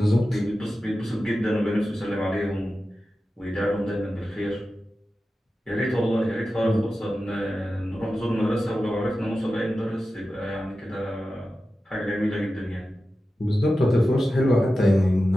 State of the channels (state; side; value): normal; both; correlation 0.93